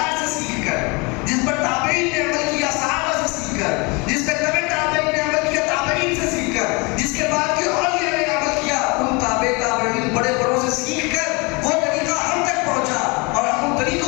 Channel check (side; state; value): right; quieter; 28.4 dB